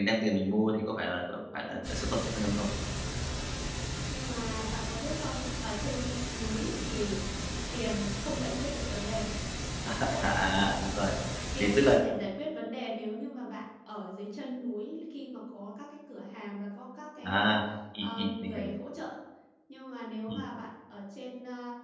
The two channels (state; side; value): identical; both; correlation 1.00